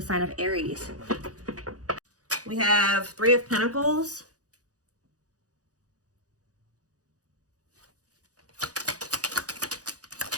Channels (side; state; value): left; late; 0.67 ms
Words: sign of Aries. We have Three of Pentacles.